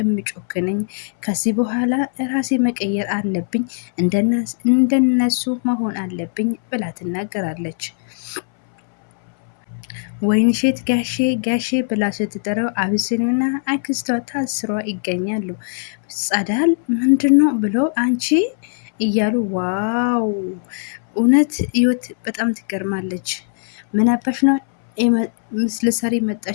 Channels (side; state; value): right; silent; 62 dB below the other